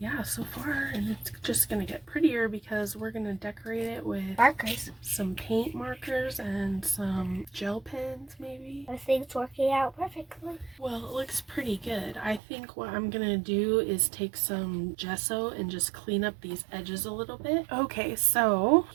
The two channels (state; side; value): drops out; left; at 12.4 s